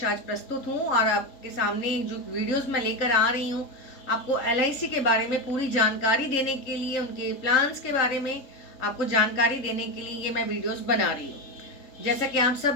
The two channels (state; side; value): late; right; 3.7 ms